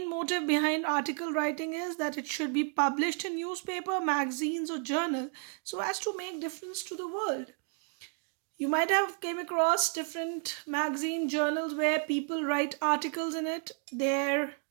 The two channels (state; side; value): quieter; left; 38.5 dB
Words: motive behind article writing is that it should be published in newspaper, magazines, or journal so as to make difference to the world. You might have came across different magazine journals where people write articles in it, their